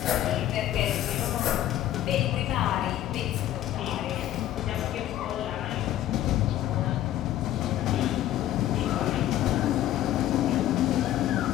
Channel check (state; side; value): quieter; right; 12.9 dB